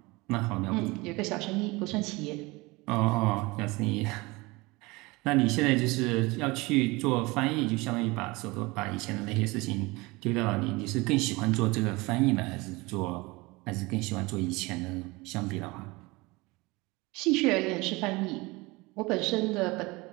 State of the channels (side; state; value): left; quieter; 23.4 dB